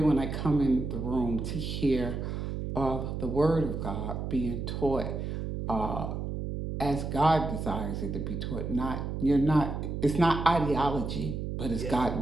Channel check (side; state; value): right; noise; hum, 4 dB below the sound